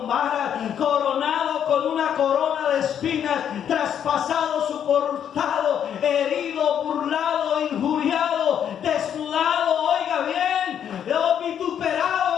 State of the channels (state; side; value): quieter; right; 9.1 dB